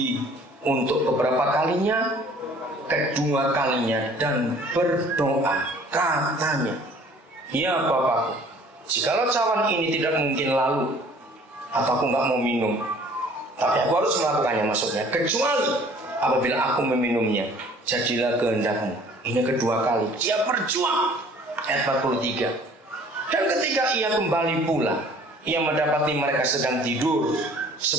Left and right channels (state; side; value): normal; both; correlation 0.53